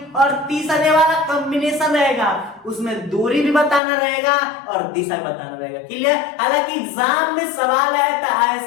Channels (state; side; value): drops out; right; at 3.8 s